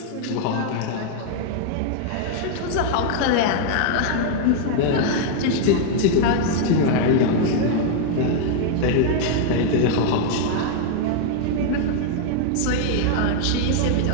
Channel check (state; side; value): different; both; correlation 0.00